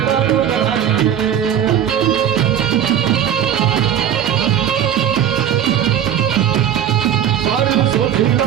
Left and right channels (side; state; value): left; quieter; 9.7 dB